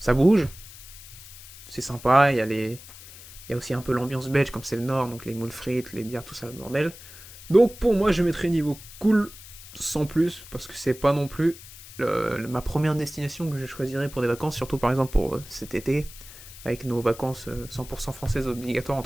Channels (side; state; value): left; noise; hiss, 17 dB below the sound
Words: bouge, c'est sympa, il y a aussi un peu l'ambiance belge, comme c'est le nord, donc les moules frites, les bières, tout ça, le bordel. Donc pour moi, je mettrais niveau cool, sans plus, parce que c'est pas non plus ma première destination que je choisirais pour des vacances, surtout par exemple pour cet été, avec nos vacances 100% françaises obligatoires,